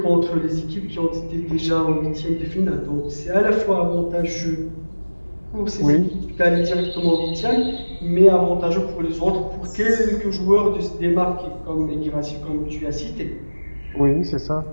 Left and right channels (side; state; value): both; inverted; correlation -1.00